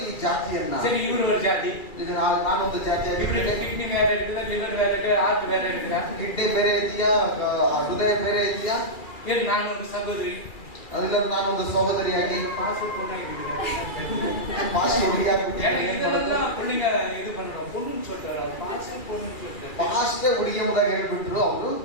ಈ ಜಾತಿಯನ್ನ. ಸರಿ, ಇವರು ஒரு ಜಾತಿ, ಈಗ ನಾನೊಂದು ಜಾತಿಯಾಗಿದ್ದೇನೆ. ಕಿಡ್ನಿ ಬೇರೆ ಇರ್ತದೆ, ಲಿವರ್ ಬೇರೆ ಇದೆ, ಹಾರ್ಟ್ ಬೇರೆ ಇರ್ತದೆ. ಕಿಡ್ನಿ ಬೇರೆ ಇದೆಯಾ, ಹೃದಯ ಬೇರೆ ಇದೆಯಾ? ಏನು ನಾನು ಒಂದು ಸಹೋದರಿ, ಅದರಿಂದ ನಾನೊಂದು ಸಹೋದರಿಯಾಗಿ ಇದೆಲ್ಲ ಹುಡುಗ ಇದು பண்றோம் பொண்ணுன்னு சொல்றாரு. பாஸ்டே உடியமுதாக ಹೇಳ್ಬಿಟ್ರು ಅವರು.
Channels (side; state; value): right; late; 2.3 ms